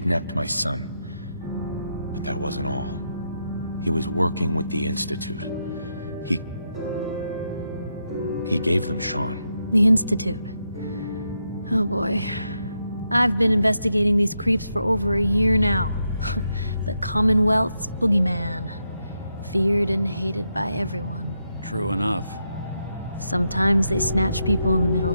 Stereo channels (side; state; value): both; inverted; correlation -0.83